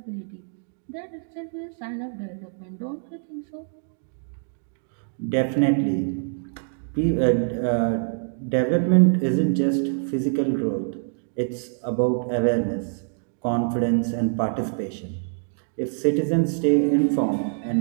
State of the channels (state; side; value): silent; left; digital silence